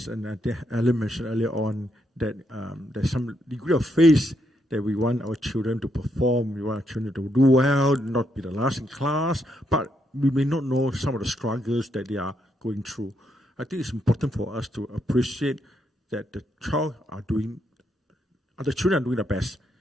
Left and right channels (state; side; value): normal; both; correlation 0.78